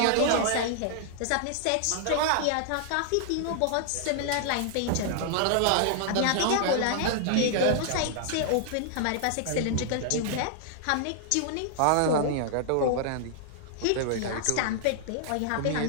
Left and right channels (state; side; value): different; both; correlation -0.01